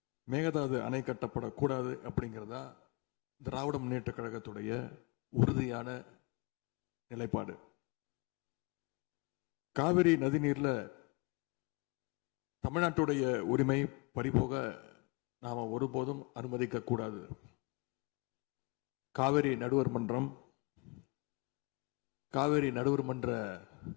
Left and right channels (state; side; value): quieter; right; 27.8 dB